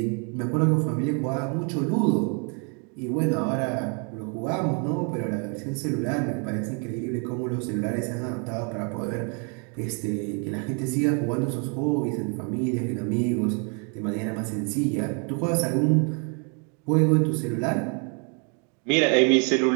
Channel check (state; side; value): quieter; left; 37.2 dB